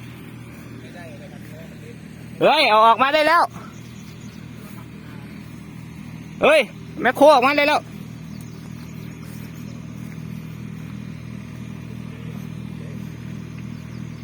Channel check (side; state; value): both; identical; correlation 1.00